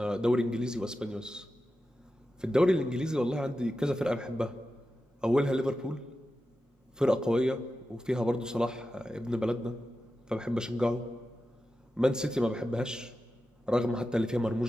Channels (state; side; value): normal; both; correlation 0.92